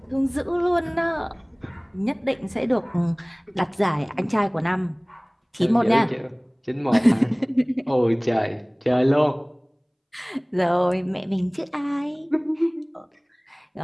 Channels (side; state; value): both; identical; correlation 1.00